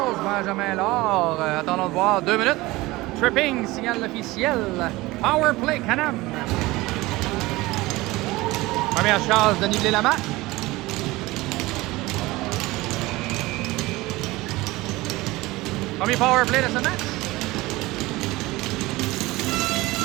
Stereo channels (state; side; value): quieter; left; 20.1 dB